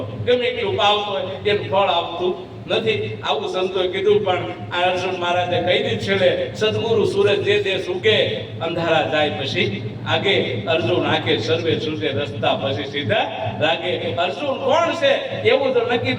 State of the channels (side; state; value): both; identical; correlation 1.00